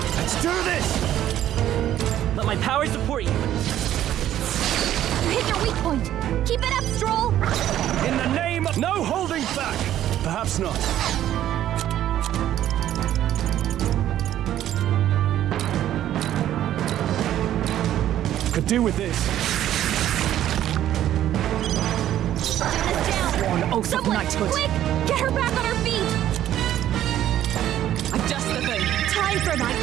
let's do this! Let my power support you! You hit your weak point! Keep it up, Stroll! In the name of... No holding back! Perhaps not. Could do with this. Get down! One oath of Someone, knighthood! quick! Get her back on her feet! I'm just the thing! Time for my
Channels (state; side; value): quieter; left; 12.0 dB